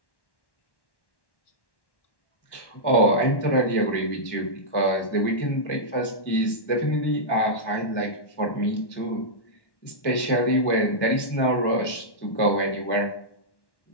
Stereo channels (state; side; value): late; right; 1.1 ms